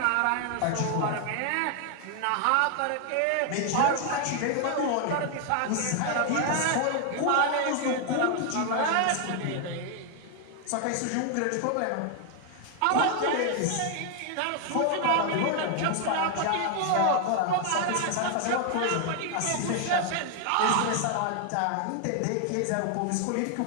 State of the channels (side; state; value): both; different; correlation 0.00